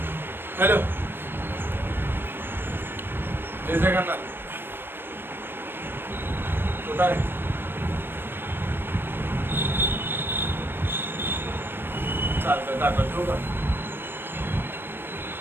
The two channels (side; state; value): left; late; 0.099 ms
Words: हॅलो, जय जगन्नाथ. कुठं आहे? चालतं टाकलं, ठेवू का?